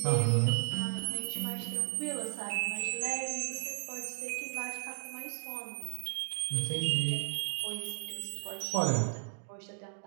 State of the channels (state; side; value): silent; left; digital silence